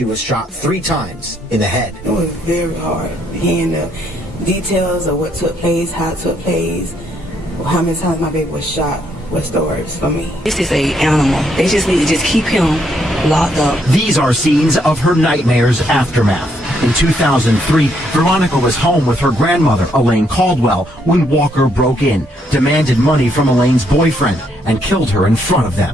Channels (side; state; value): both; normal; correlation 0.73